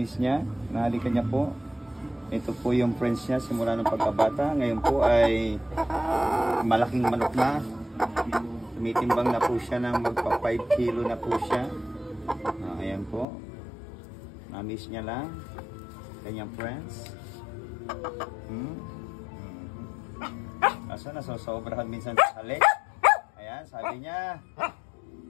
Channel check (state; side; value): drops out; right; at 13.2 s